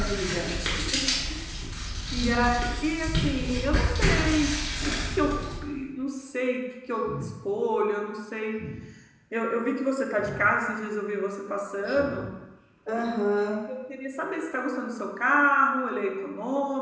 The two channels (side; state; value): both; identical; correlation 1.00